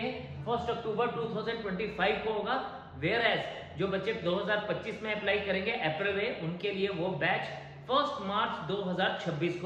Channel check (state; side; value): identical; both; correlation 1.00